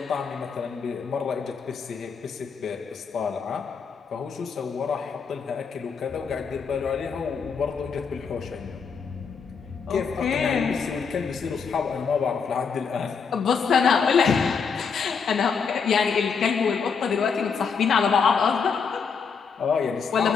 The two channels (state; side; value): quieter; right; 5.9 dB